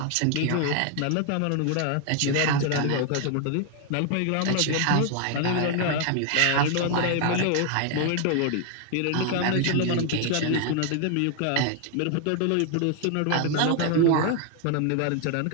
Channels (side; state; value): both; different; correlation 0.00